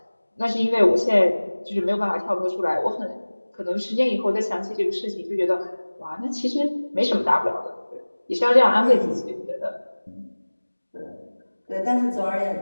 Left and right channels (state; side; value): inverted; both; correlation -1.00